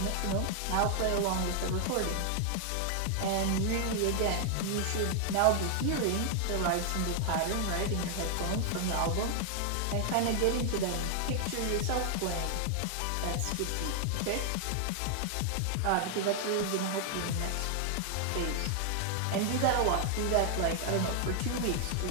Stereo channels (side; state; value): both; different; correlation 0.00